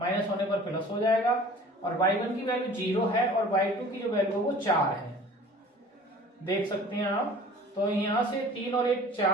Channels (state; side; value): normal; both; correlation 0.45